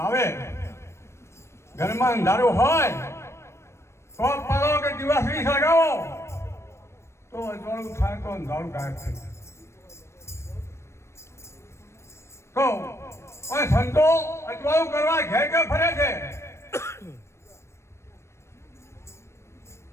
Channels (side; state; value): right; late; 0.13 ms